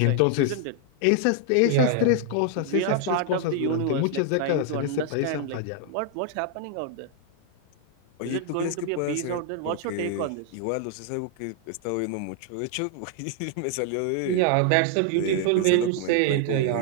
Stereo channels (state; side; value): different; both; correlation 0.00